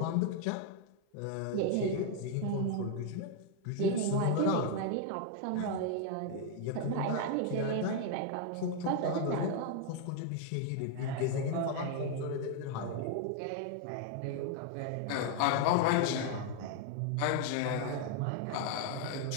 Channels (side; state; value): both; different; correlation 0.00